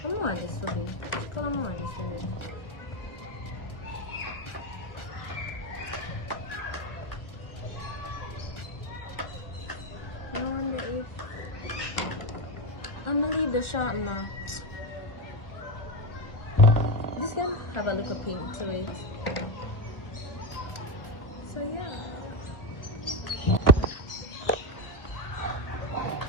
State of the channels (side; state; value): right; late; 1.5 ms